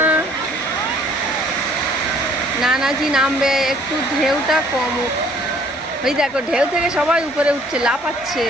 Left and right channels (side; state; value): both; normal; correlation 0.59